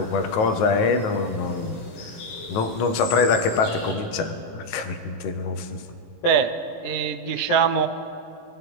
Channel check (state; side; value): late; right; 18 ms